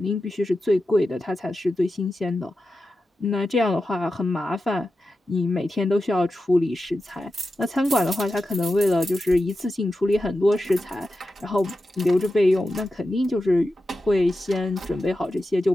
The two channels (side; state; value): both; normal; correlation 0.91